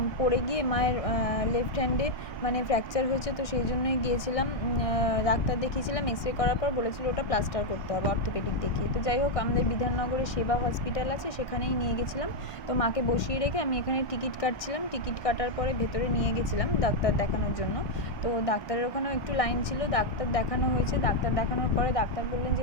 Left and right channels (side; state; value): right; late; 1.2 ms